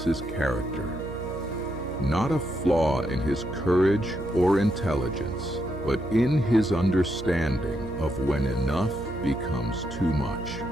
character. Not a flaw in his courage or intelligence, but in his understanding of when enough becomes too much.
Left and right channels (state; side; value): noise; right; hum, 11 dB below the sound